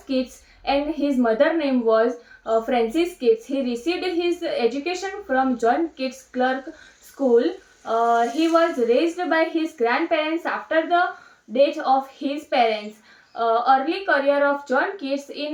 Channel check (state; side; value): identical; both; correlation 1.00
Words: Keats and his mother name was Frances Keats. He received his education from John Keats Clerk School. He was raised by his grandparents after the death of his parents. Early career of John Keats